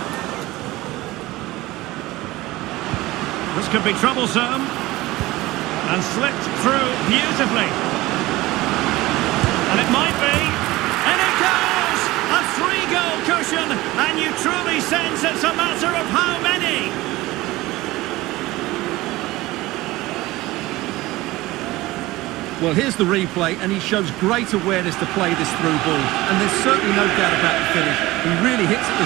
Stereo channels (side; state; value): left; quieter; 18.9 dB